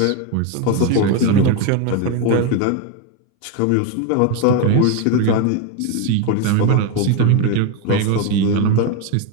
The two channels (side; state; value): both; different; correlation 0.02